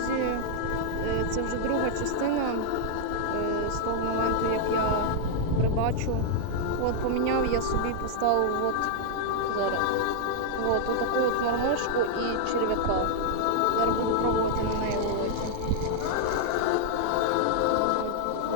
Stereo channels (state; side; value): different; both; correlation -0.01